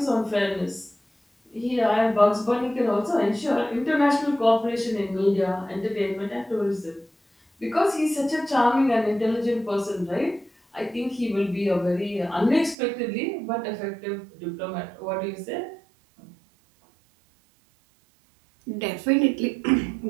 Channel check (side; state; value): left; drops out; at 12.8 s